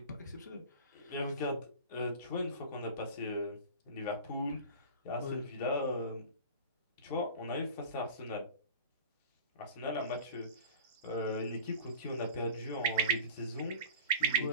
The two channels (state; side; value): inverted; both; correlation -0.37